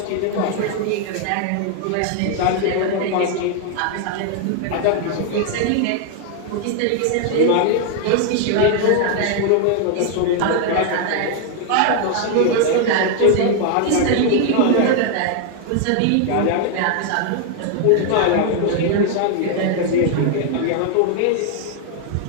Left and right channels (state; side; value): different; both; correlation 0.00